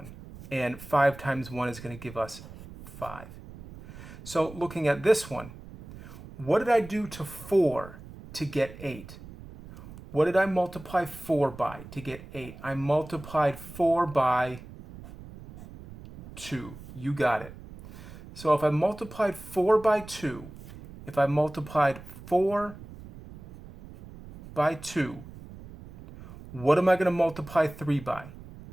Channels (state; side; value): noise; right; rumble, 16 dB below the sound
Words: And 5 times 1 is going to give us 5. So looking at this one, what did I do to 4 to get 8? What did I multiply 4 by to get 8? I multiplied 4 by 2. You got it. So if I multiplied 4 by 2, if I multiplied 4 by 2, what am I going to multiply 3 by?